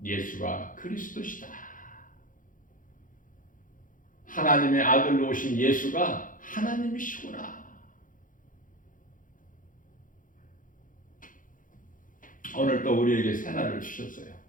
예수가 그리스도시다. 하나님의 아들로 오신 예수가 하나님이시구나. 오늘 또 우리에게 새날을 주셨어요.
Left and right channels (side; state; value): right; late; 0.39 ms